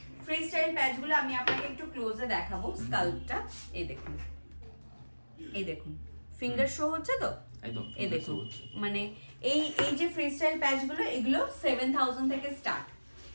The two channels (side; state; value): both; inverted; correlation -1.00